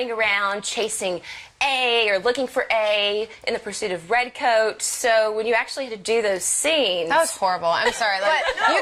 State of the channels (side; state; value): both; identical; correlation 1.00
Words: around chasing A or looking for A in the pursuit of Redcoat. So when you actually had to do those scenes, That was horrible. I'm sorry. Like you